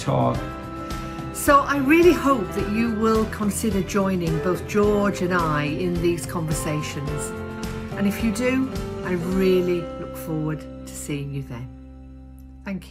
So I really hope that you will consider joining both George and I in these conversations. And if you do, I really look forward to seeing you then.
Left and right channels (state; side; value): identical; both; correlation 1.00